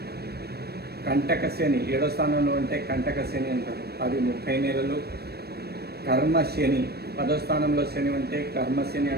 కంటక శని 7వ స్థానంలో ఉంటే కంటక శని అంటారు, అది 30 నెలలు, కర్మ శని 10వ స్థానంలో శని ఉంటే కర్మ శని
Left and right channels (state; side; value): late; left; 0.47 ms